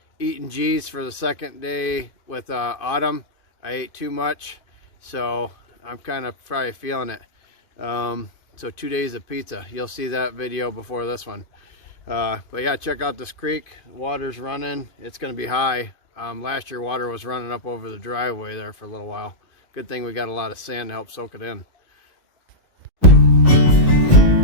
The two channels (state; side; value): late; right; 2.5 ms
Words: eating G's for the second day with Autumn. I ate too much, so I'm kind of probably feeling it. So 2 days of pizza. You'll see that video before this one. But yeah, check out this creek. Water's running. It's going to be high. Last year water was running up over the driveway there for a little while. Good thing we got a lot of sand to help soak it in.